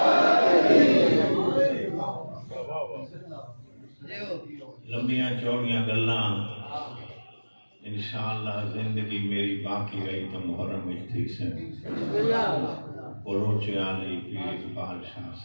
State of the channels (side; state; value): both; inverted; correlation -1.00